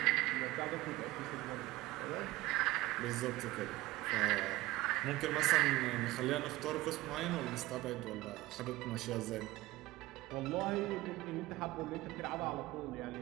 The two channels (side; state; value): left; quieter; 18.5 dB